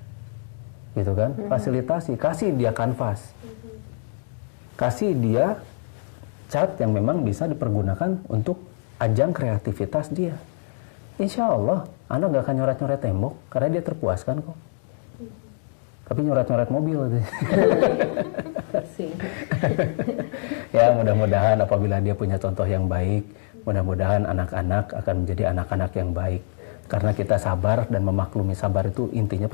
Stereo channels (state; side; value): silent; right; digital silence